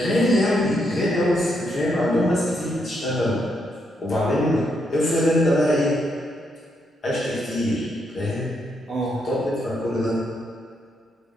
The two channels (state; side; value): normal; both; correlation 0.78